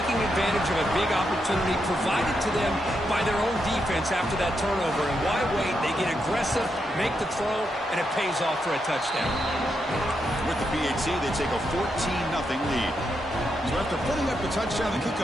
advantage of a big opportunity provided to them by their own defense after that turnover. And why wait? They get aggressive, make the throw, and it pays off for a touchdown. With the PAT, they take a 14-0 lead. So after putting up the touchdown, the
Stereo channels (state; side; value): normal; both; correlation 0.82